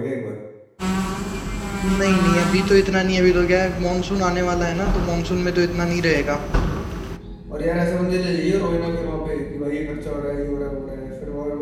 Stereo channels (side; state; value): both; identical; correlation 1.00